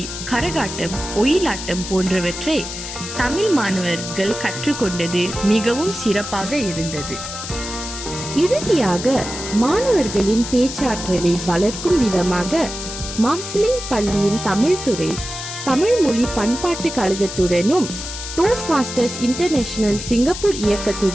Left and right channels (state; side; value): noise; left; hiss, 8 dB below the sound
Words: கரகாட்டம், ஒயிலாட்டம் போன்றவற்றை தமிழ் மாணவர்கள் கற்றுக்கொண்டது மிகவும் சிறப்பாக இருந்தது. இறுதியாக மாணவர்களின் பேச்சாற்றலை வளர்க்கும் விதமாக மார்சிலிங் பள்ளியின் தமிழ் துறை தமிழ் மொழி பண்பாட்டு கழகத்துடனும் டோஸ்ட் மாஸ்டர்ஸ் இன்டர்நேஷனல் சிங்கப்பூர்